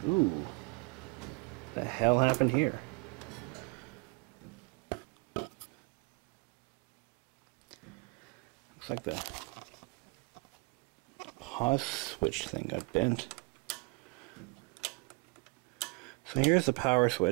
Ooh. The hell happened here? Looks like the pause switch thing got bent. So here's the power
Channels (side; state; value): left; quieter; 29.5 dB